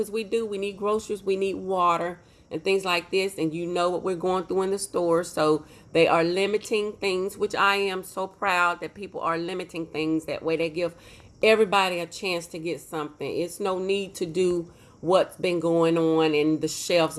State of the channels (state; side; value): identical; both; correlation 1.00